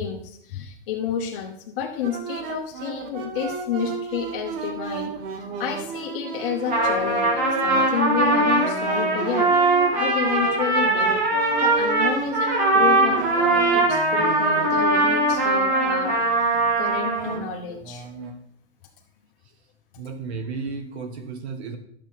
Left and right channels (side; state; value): both; normal; correlation 0.04